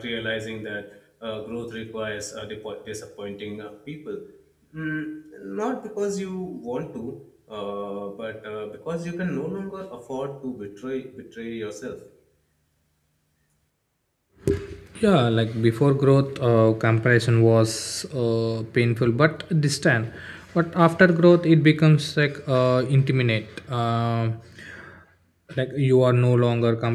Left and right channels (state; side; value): identical; both; correlation 1.00